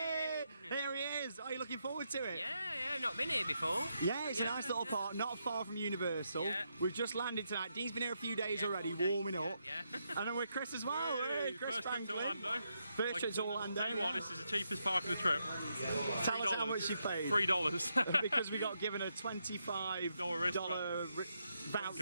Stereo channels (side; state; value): both; inverted; correlation -0.81